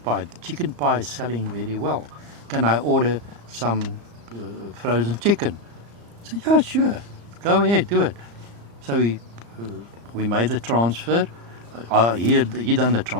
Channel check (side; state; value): left; late; 35 ms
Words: pie? The chicken pie is selling very well. Can I order some frozen chicken? I said, yeah, sure. Go ahead, do it. So we made the transfer. He done the